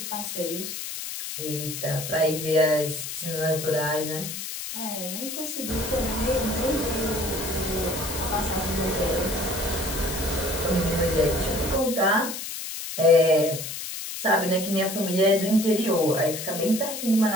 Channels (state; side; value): noise; left; hiss, 7 dB below the sound